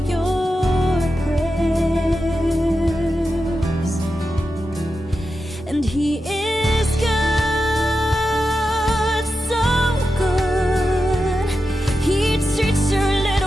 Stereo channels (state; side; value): normal; both; correlation 0.90